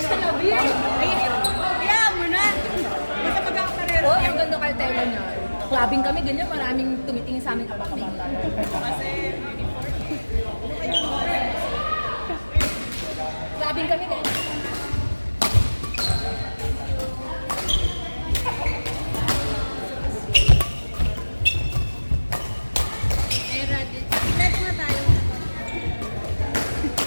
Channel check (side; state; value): both; inverted; correlation -1.00